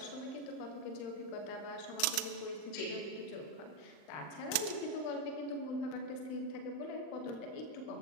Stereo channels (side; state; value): right; late; 39 ms